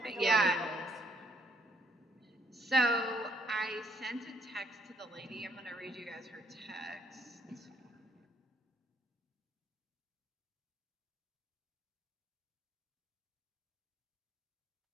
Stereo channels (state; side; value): normal; both; correlation 0.68